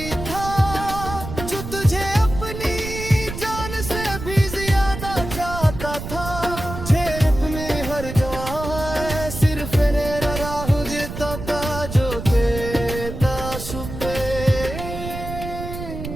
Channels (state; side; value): noise; right; rumble, 8 dB below the sound